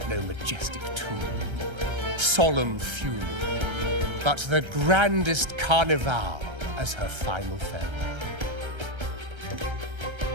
no majestic tomb or solemn funeral, but the grandest carnival as her final farewell.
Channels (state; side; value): late; left; 1.3 ms